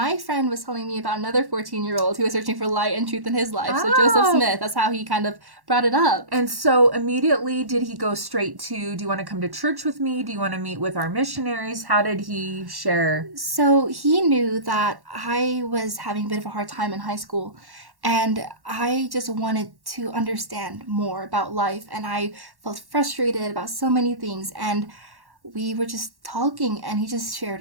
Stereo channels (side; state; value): left; late; 1.1 ms